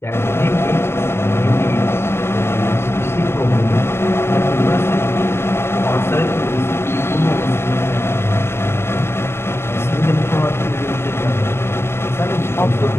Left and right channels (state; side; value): late; right; 0.12 ms